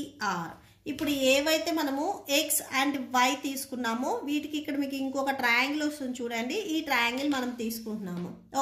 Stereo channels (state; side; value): identical; both; correlation 1.00